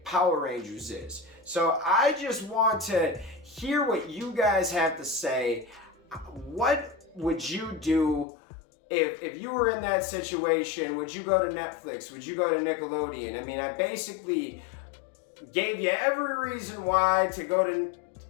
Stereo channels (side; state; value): right; drops out; at 8.2 s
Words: Power Rangers is. So I just want to hear what you guys have to say. What would you do if you were in that situation? Would you go to Netflix? Would you go to Nickelodeon? I mean, I basically gave you every reason why to